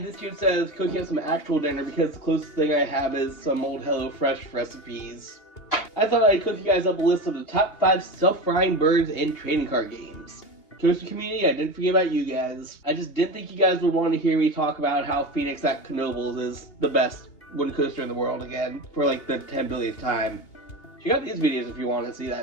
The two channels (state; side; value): late; right; 2.8 ms